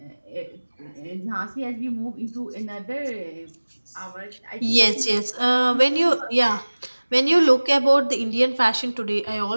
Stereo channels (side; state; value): both; inverted; correlation -1.00